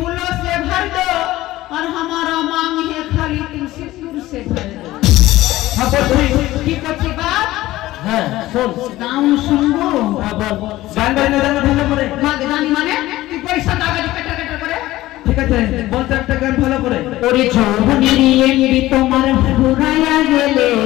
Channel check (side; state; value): right; quieter; 16.6 dB